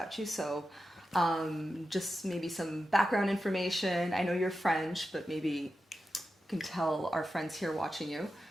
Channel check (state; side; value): normal; both; correlation 0.91